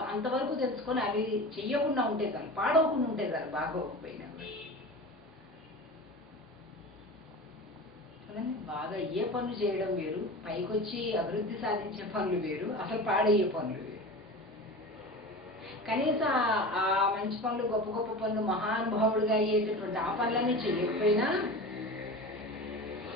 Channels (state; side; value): normal; both; correlation 0.32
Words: అంతవరకు తెలుసుకొని అవి చెయ్యకుండా ఉంటే చాలు, పాడవకుండా ఉంటే చాలు, బాగోకపోయినా. బాగా అయ్యే పనులు చేయడం వేరు, పైకొచ్చి అభివృద్ధి సాధించే పనులు వేరు, అసలు పాడయ్యే పనులు వేరు. కనీసం ఆ మంచి పనులు, గొప్ప గొప్ప పనులు, మహానుభావుడిగా అయ్యేటటువంటి ఆ పనులన్నీ చేయకపోయినా